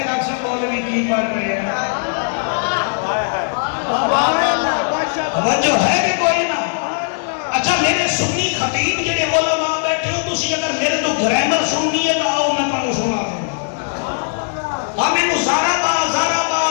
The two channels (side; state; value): right; silent; 65 dB below the other